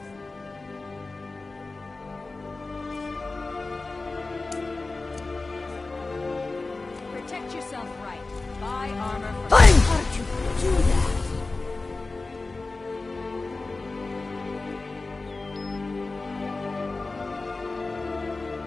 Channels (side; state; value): right; quieter; 3.5 dB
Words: Protect yourself right. Buy armor for... How did you do that?